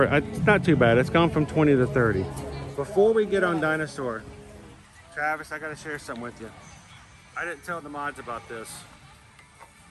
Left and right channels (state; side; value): identical; both; correlation 1.00